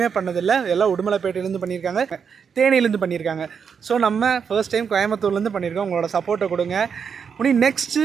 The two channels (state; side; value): quieter; left; 6.6 dB